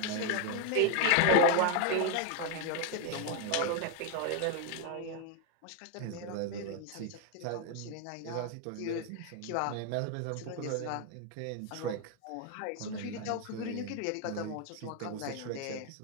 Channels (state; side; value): different; both; correlation 0.01